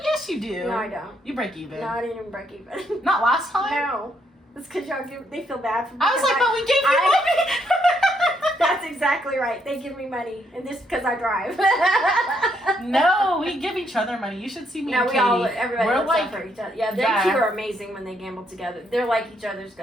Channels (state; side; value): normal; both; correlation 0.74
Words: yes you do. No, I don't. You break even. No, I didn't even break even. Not last time? No. It's because they feel bad for me. I was like, but we gave you money. That's exactly right. They give me money. And this because I drive. No, we give each other money. You should see me No, and we Katie. all, everybody We're looks like, out for each other. Yeah, them yeah. two are amazing when they gamble together. They're like each other's